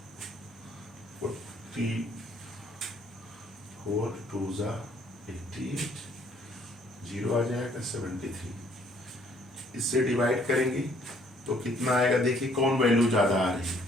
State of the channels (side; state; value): both; normal; correlation 0.63